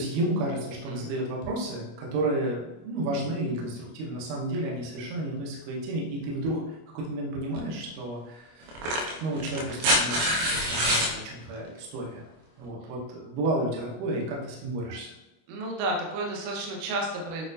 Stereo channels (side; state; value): left; late; 25 ms